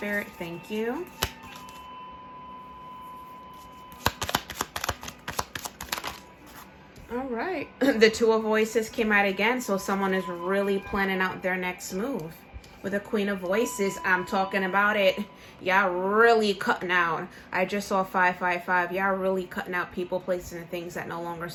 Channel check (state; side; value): identical; both; correlation 1.00